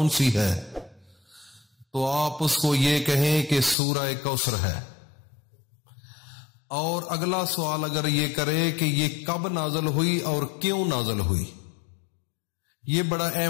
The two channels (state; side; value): drops out; right; at 3.8 s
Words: سی ہے، تو آپ اس کو یہ کہیں کہ سورہ کوثر ہے۔ اور اگلا سوال اگر یہ کرے کہ یہ کب نازل ہوئی اور کیوں نازل ہوئی، یہ بڑا